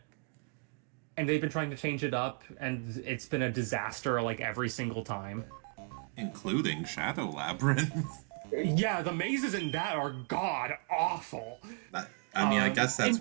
And they've been trying to change it up, and it's been a disaster, like, every single time. Including Shadow Labyrinth. Yeah, the mazes in that are god-awful. I mean, I guess that's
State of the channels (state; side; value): quieter; left; 37.4 dB